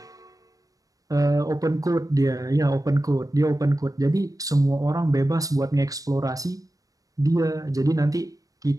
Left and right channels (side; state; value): left; late; 0.17 ms